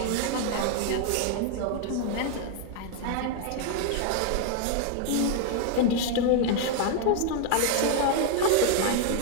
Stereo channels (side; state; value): both; different; correlation 0.00